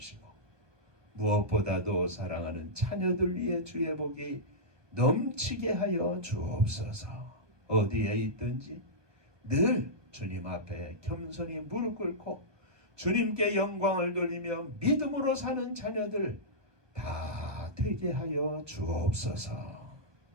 무엇보다도 사랑하는 자녀들 위해 주의 복이 넘치게 하여 주옵소서. 어디에 있든지 늘 주님 앞에 겸손히 무릎 꿇고 주님께 영광을 돌리며 믿음으로 사는 자녀들 다 되게 하여 주옵소서.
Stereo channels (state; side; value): late; left; 1.2 ms